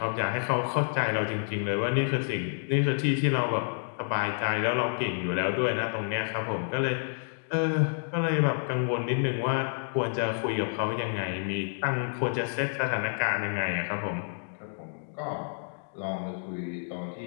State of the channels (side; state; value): right; silent; digital silence